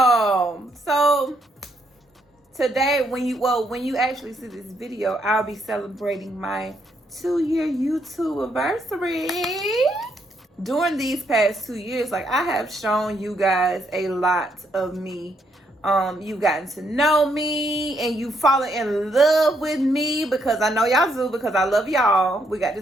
today when you actually see this video, I'll be celebrating my 2-year YouTube anniversary. During these past 2 years, like, I have shown you guys a lot of me. You've gotten to know me and you fallen in love with me because I know y'all do, because I love y'all. We got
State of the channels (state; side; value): normal; both; correlation 0.74